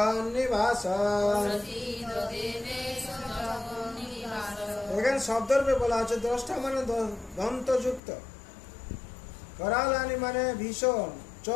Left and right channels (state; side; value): drops out; right; at 8.0 s